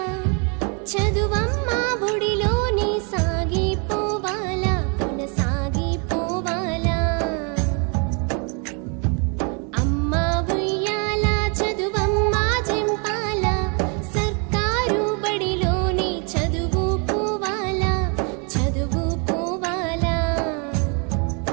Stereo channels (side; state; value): left; quieter; 36.1 dB